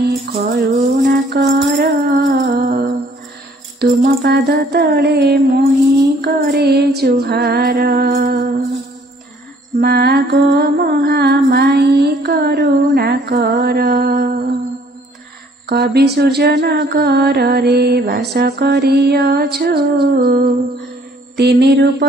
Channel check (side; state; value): both; normal; correlation 0.60